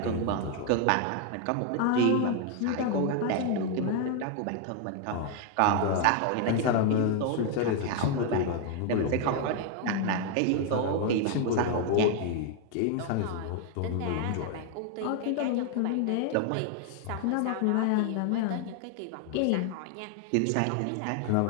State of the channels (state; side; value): different; both; correlation 0.00